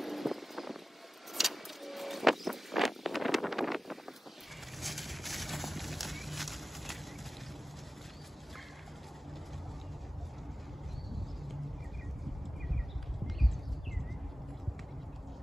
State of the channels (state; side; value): normal; both; correlation 0.96